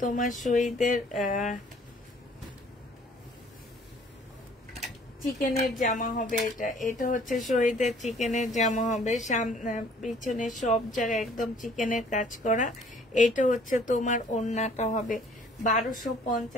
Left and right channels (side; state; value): both; normal; correlation 0.56